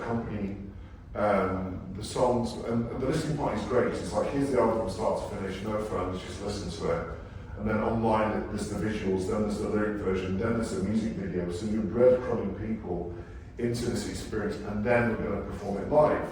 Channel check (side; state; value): both; identical; correlation 1.00